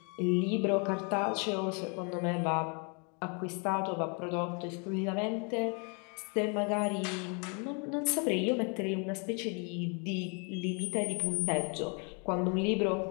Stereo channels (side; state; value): right; quieter; 35.9 dB